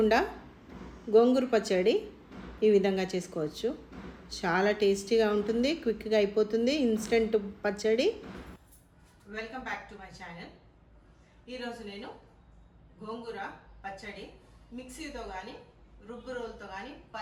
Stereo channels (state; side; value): identical; both; correlation 1.00